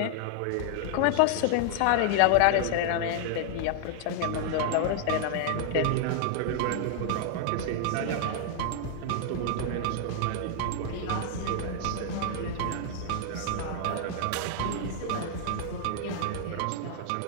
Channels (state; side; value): different; both; correlation 0.00